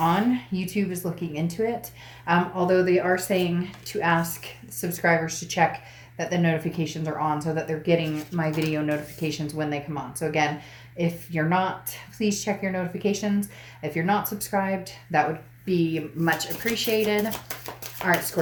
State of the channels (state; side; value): identical; both; correlation 1.00